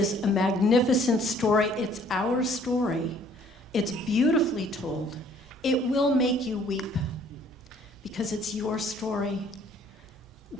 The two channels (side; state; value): both; normal; correlation 0.59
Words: a magnificent story. It's our story. It's beautifully told. It will make you weep because it's your story.